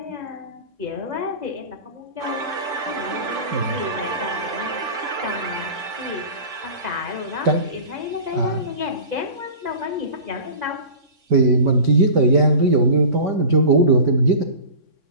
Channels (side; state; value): left; late; 3.6 ms